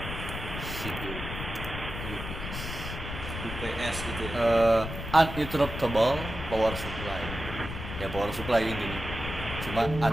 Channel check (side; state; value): left; noise; rumble, 7 dB below the sound